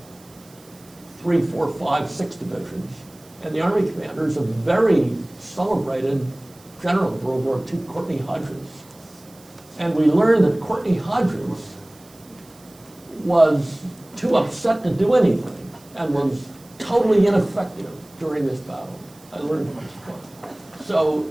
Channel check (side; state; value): right; noise; hiss, 26 dB below the sound